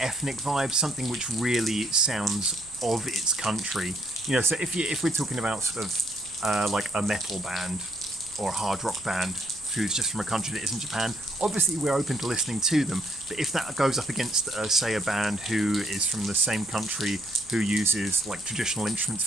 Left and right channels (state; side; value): noise; right; rumble, 24 dB below the sound